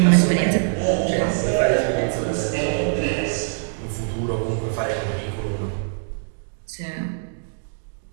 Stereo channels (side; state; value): left; silent; digital silence